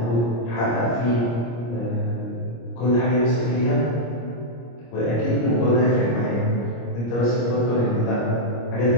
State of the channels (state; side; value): late; right; 25 ms